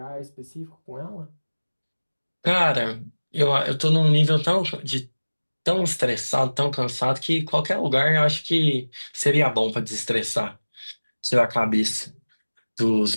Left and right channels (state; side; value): inverted; both; correlation -1.00